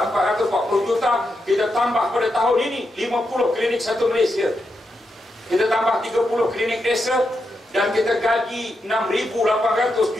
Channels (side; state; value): both; normal; correlation 0.85